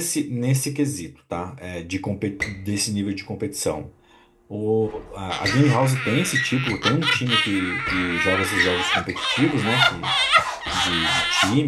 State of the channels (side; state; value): both; identical; correlation 1.00